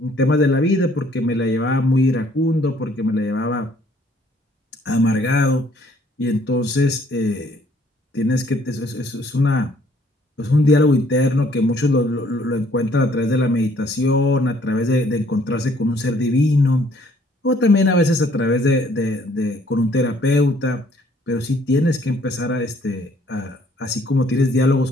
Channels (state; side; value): normal; both; correlation 0.62